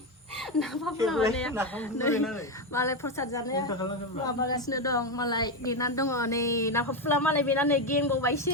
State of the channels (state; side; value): normal; both; correlation 0.10